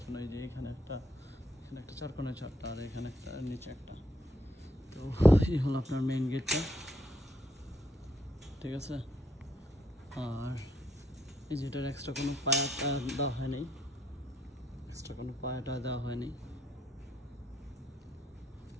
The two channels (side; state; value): both; normal; correlation 0.74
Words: জন্য। এই যে এখানে একটা চারকোণের চারটা, আর এখানে একটা নিচে একটা। তো এই হলো আপনার মেইন গেটটা, ঠিক আছে। আর এই যে এটার এক্সট্রা কোনো পায়াটা দেওয়া হয়নি,